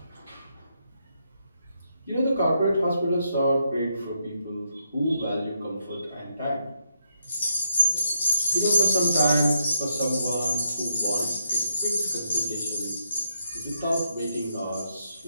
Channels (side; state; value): both; inverted; correlation -0.79